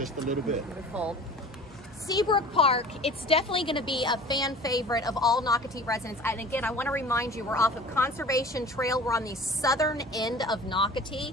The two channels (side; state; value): both; normal; correlation 0.43